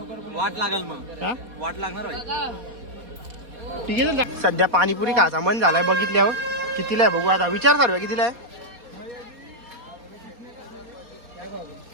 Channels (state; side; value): late; left; 4.2 ms